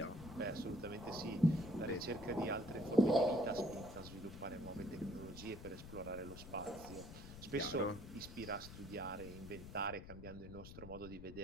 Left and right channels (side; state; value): left; noise; rumble, 12 dB below the sound